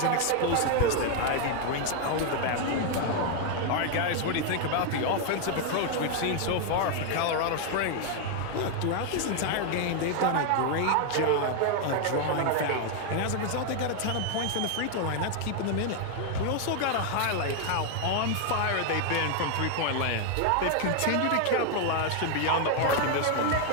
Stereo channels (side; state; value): both; different; correlation 0.00